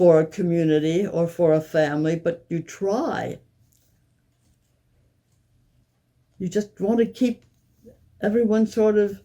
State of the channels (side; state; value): both; identical; correlation 1.00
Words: a community or for a family, but you try. You just want to keep everyone sort of